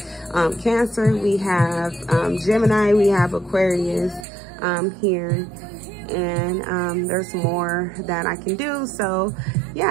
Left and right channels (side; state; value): left; drops out; at 4.2 s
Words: Cancer, we have Gemini, we have Aquarius here, and there's more that I can do. So